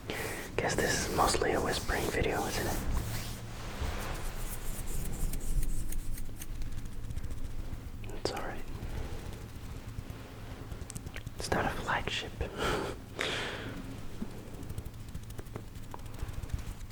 Guess this is mostly a whispering video, isn't it? It's alright. It's not a flagship.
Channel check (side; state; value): both; identical; correlation 1.00